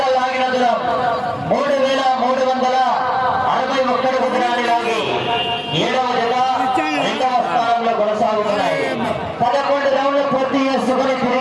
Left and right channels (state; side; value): identical; both; correlation 1.00